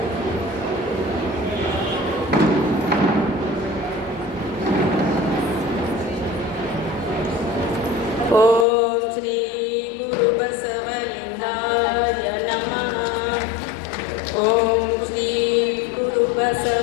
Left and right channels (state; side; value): drops out; right; at 8.7 s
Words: ಓಂ ಶ್ರೀ ಗುರು ಬಸವಲಿಂಗಾಯ ನಮಃ. ಓಂ ಶ್ರೀ ಗುರು